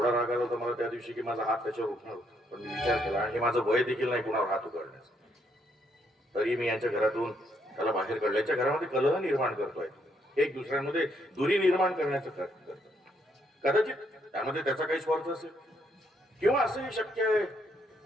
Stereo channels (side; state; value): both; normal; correlation 0.73